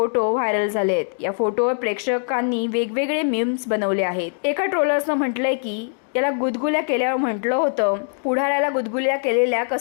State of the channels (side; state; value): right; silent; digital silence